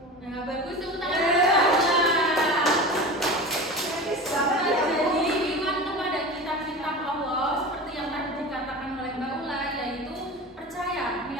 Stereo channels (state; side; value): normal; both; correlation 0.31